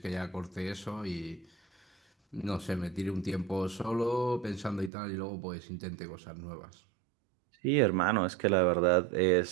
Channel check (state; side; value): drops out; left; at 4.9 s